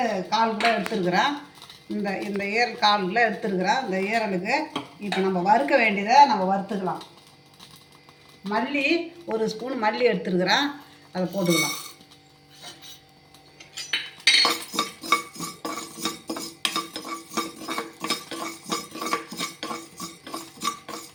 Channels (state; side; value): identical; both; correlation 1.00